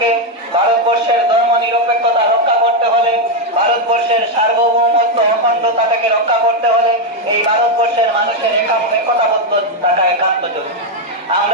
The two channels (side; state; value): both; normal; correlation 0.04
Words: ভারতবর্ষের ধর্ম নিরপেক্ষতা রক্ষা করতে হলে, ভারতবর্ষের সার্বভৌমত্ব অখণ্ডতাটাকে রক্ষা করতে হলে এই ভারতবর্ষের মানুষের একতাবদ্ধতাটা একান্ত জরুরি।